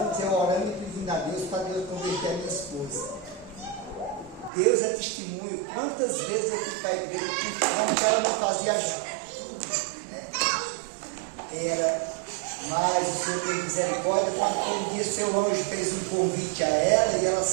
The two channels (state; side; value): drops out; left; at 4.5 s